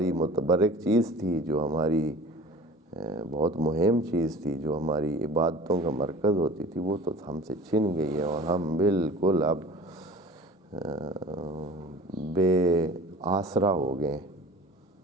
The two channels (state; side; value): normal; both; correlation 0.42